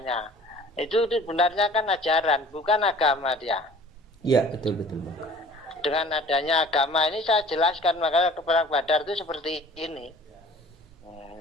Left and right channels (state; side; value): normal; both; correlation 0.48